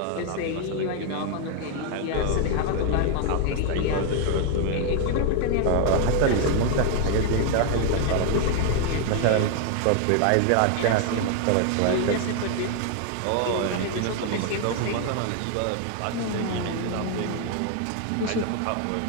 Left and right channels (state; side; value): different; both; correlation 0.00